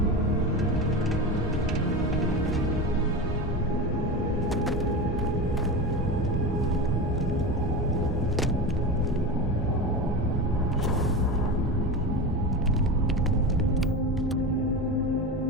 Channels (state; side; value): normal; both; correlation 0.23